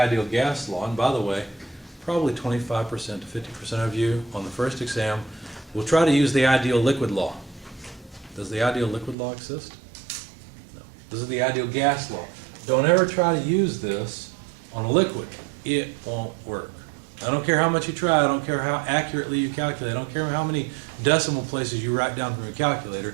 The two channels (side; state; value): left; drops out; at 9.2 s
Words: gas law, and by the way, probably 25% to 50% of you on the first exam will try to use the ideal liquid law. Does the ideal liquid law exist? No. This is the ideal gas law. Don't ever try to use this on a liquid. It won't work. I don't care how much you try, I don't care how accurately you calculate, I don't care how many decimal places you write down from your calculator,